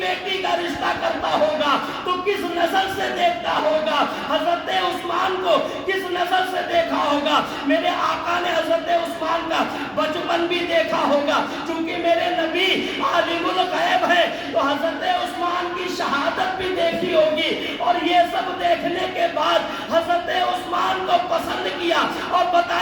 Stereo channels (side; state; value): both; identical; correlation 1.00